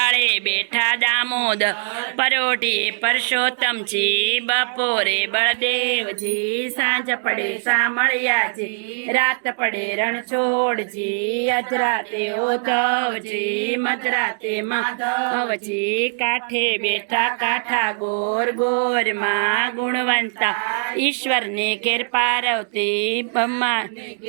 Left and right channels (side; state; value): left; silent; 65 dB below the other